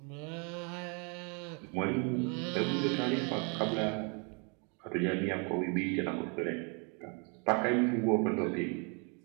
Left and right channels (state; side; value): quieter; left; 35.6 dB